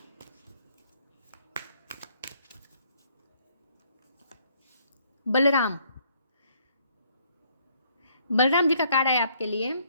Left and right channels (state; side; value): inverted; both; correlation -0.66